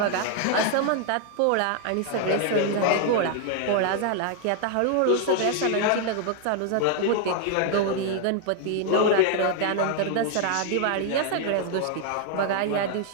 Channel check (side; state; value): both; different; correlation 0.00